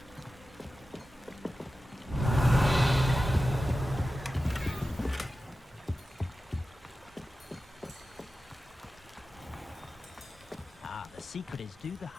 The secret is do the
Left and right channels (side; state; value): both; normal; correlation 0.93